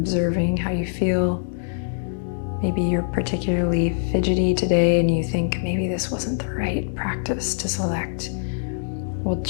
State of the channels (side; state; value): right; silent; digital silence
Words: how you feel. Maybe you're particularly fidgety today and you think maybe this wasn't the right practice to select. We'll